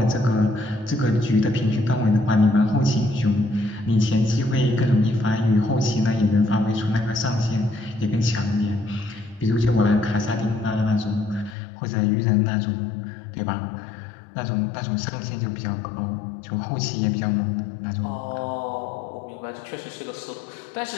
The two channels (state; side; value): drops out; right; at 11.6 s